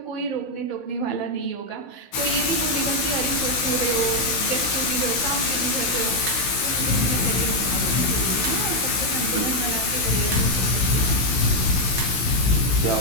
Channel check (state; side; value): late; right; 16 ms